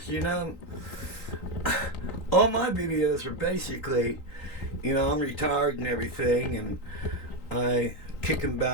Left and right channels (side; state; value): right; late; 3.9 ms